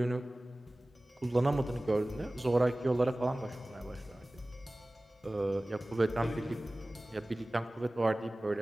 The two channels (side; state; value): both; normal; correlation 0.98